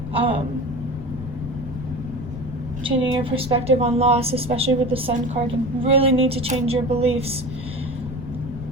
Changing your perspective on loss, especially with the Sun card. You really need to change your beliefs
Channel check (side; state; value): left; noise; rumble, 10 dB below the sound